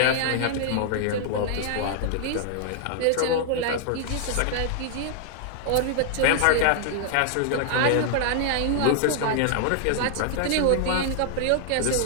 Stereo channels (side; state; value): both; different; correlation -0.01